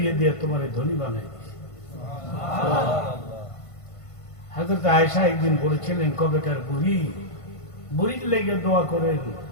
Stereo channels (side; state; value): right; late; 1.5 ms